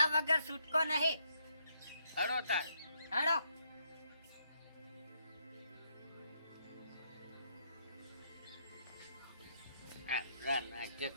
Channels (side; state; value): both; inverted; correlation -0.75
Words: વગર છૂટકો નહીં હડો તાર હેડો નાટક